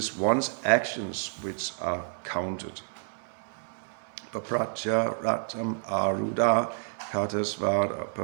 one's actions which are counted. Papratya ratam aruda katasvara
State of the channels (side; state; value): left; silent; digital silence